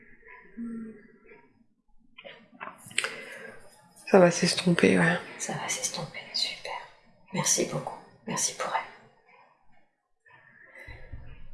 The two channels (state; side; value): identical; both; correlation 1.00